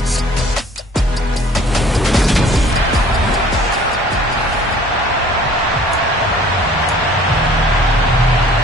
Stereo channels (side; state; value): both; normal; correlation 0.52